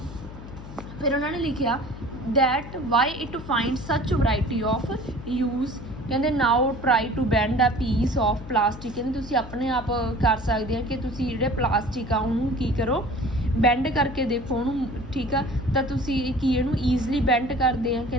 ਫਿਰ ਉਹਨਾਂ ਨੇ ਲਿਖਿਆ that why it finds such variety of use। ਕਹਿੰਦੇ now try to bend a piece of plastic। ਕਹਿੰਦੇ ਤੁਸੀਂ ਆਪਣੇ ਆਪ ਕਰ ਸਕਦੇ ਆ ਕਿ ਤੁਸੀਂ ਜਿਹੜੇ ਪਲਾਸਟਿਕ ਆ ਉਹਨੂੰ ਕੀ ਕਰੋ, ਬੈਂਡ ਕਰਕੇ ਦੇਖੋ ਉਹਨੂੰ। ਠੀਕ ਆ, ਤਾਂ ਤੁਸੀਂ ਕੀ ਇਹਨੂੰ ਈਜ਼ਲੀ ਬੈਂਡ ਕਰਦੇ ਆ।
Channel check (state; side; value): noise; left; hum, 13 dB below the sound